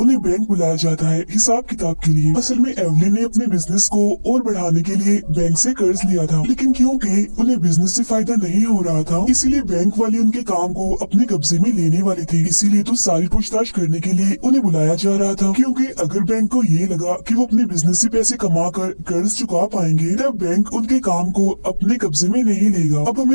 बैंक बुलाया जाता है हिसाब किताब के लिए। असल में एवलिन ने अपने बिजनेस को और बढ़ाने के लिए बैंक से कर्ज लिया था, लेकिन क्योंकि उन्हें बिजनेस से फायदा नहीं हो रहा था, इसीलिए बैंक वाले उनके काम को अपने कब्जे में लेने वाले थे। इसीलिए तो सारी पूछताछ करने के लिए उन्हें बुलाया जा रहा था, क्योंकि अगर बैंक को ये लगा कि वो अपने बिजनेस से पैसे कमा कर कर्ज चुका पाएंगे, तब बैंक उनके काम को अपने कब्जे में नहीं लेगा। अब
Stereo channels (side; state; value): both; inverted; correlation -1.00